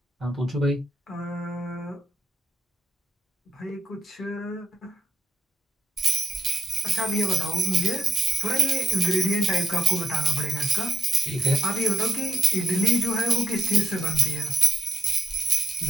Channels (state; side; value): normal; both; correlation 0.80